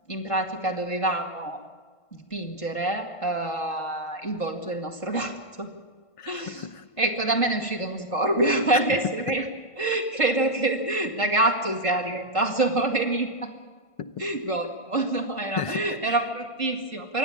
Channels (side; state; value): right; late; 1.5 ms